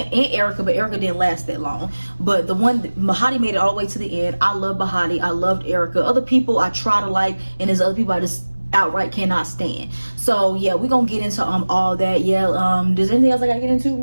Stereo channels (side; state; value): both; inverted; correlation -1.00